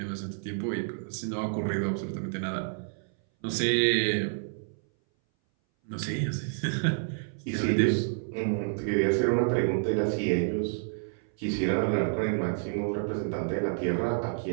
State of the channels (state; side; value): silent; left; 59 dB below the other